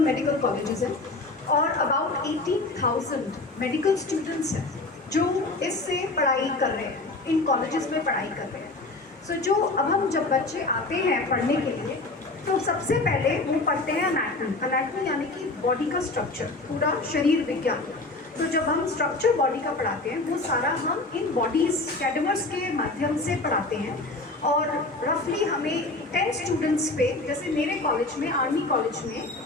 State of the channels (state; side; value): quieter; right; 3.1 dB